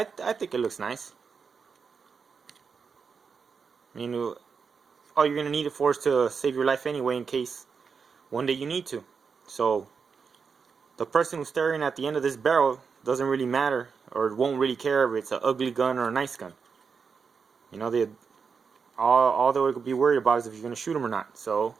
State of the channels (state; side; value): quieter; left; 5.7 dB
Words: think it looks nice. I mean, all you're going to need it for is to save your life anyway, in case one day you need to. So the person who's staring at the end of this barrel doesn't really matter, or won't really care if it's an ugly gun or a nice gun. You know, all they would be worried about is if you're going to shoot them or not. So